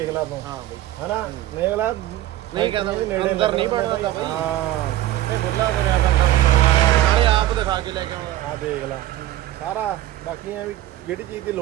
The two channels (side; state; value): left; quieter; 14.3 dB